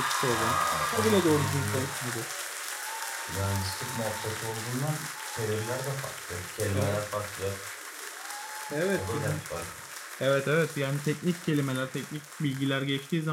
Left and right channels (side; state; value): both; identical; correlation 1.00